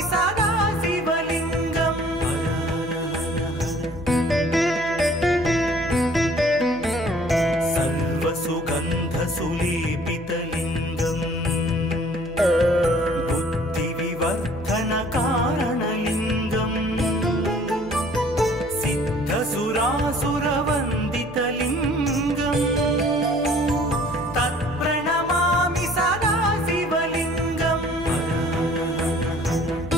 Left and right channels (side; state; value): right; noise; hum, 18 dB below the sound